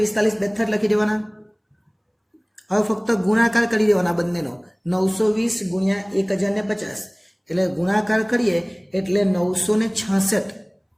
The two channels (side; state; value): both; identical; correlation 1.00